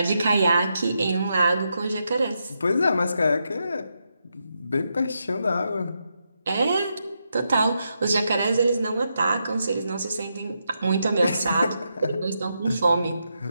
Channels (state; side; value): inverted; both; correlation -0.83